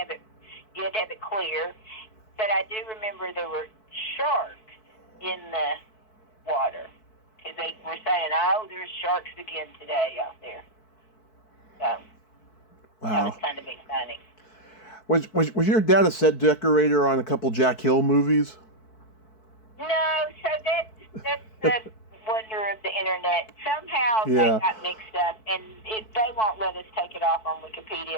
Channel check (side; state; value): right; late; 4.6 ms